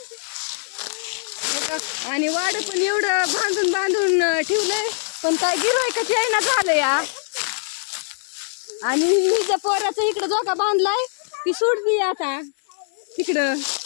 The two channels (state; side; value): silent; right; 64 dB below the other